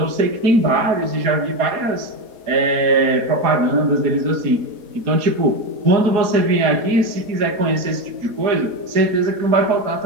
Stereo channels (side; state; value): left; late; 4.1 ms